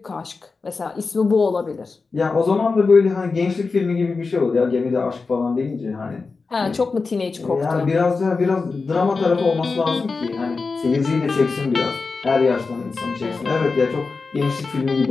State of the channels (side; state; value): right; quieter; 4.3 dB